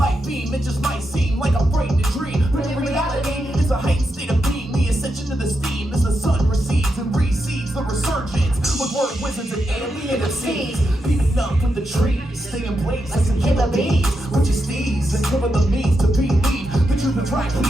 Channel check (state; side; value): normal; both; correlation 0.85